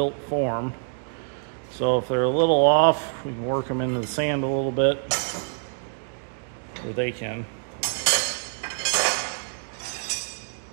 form. So if they're a little off, we can work them into the sand a little bit, or they can.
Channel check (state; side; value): silent; left; digital silence